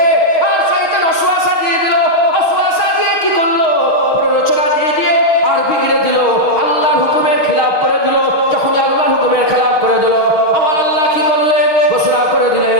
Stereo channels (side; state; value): right; late; 6.4 ms